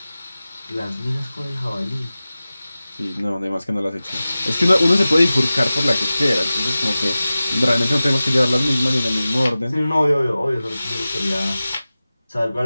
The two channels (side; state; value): both; inverted; correlation -0.96